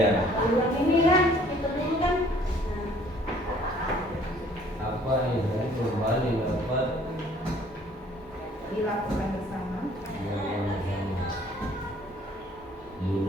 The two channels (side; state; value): both; normal; correlation 0.57